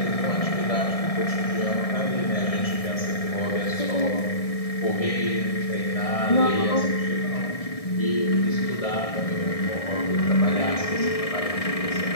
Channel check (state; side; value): late; right; 1.6 ms